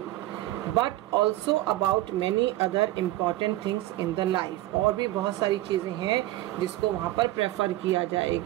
but also about many other important things in the life, और भी बहुत सारी चीजें हैं जिसको वहां पर प्रेफर किया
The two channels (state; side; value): quieter; left; 16.4 dB